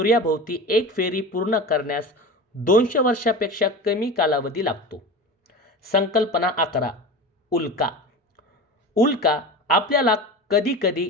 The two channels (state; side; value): normal; both; correlation 0.30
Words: एक फेरी पूर्ण करण्यास 200 वर्षापेक्षा कमी कालावधी लागतो. संकल्पना 11. उल्का. उल्का आपल्याला